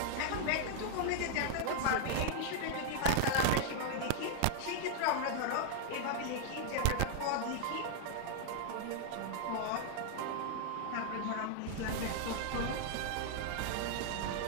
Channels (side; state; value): both; different; correlation -0.01